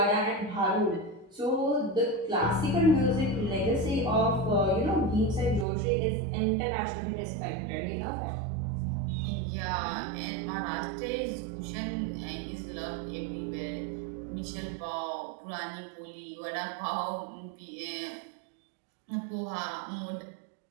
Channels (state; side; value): drops out; left; at 5.7 s